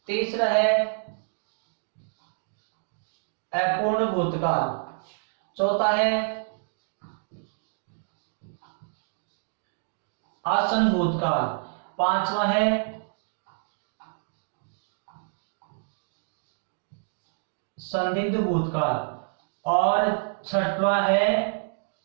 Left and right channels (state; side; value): silent; left; digital silence